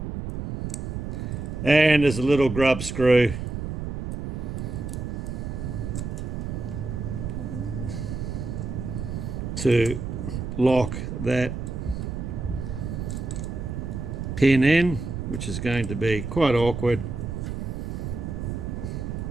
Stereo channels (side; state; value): right; noise; rumble, 5 dB below the sound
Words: And there's a little grub screw to lock that pin in, which is going to be quite awkward.